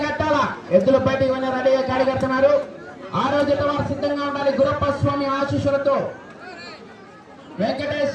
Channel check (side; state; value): both; identical; correlation 1.00